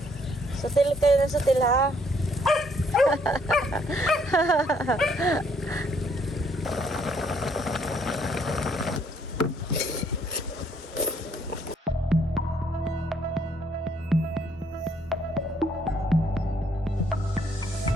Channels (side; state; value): both; normal; correlation 0.67